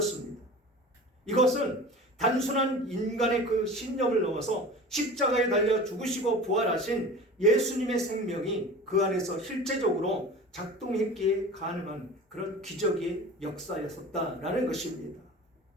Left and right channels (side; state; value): both; normal; correlation 0.37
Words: 이것은 단순한 인간의 그 신념을 넘어서 십자가에 달려 죽으시고 부활하신 예수님의 생명이 그 안에서 실제적으로 작동했기에 가능한 그런 기적의 역사였었다라는 것입니다.